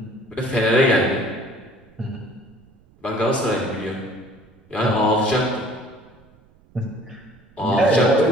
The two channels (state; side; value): noise; right; rumble, 29 dB below the sound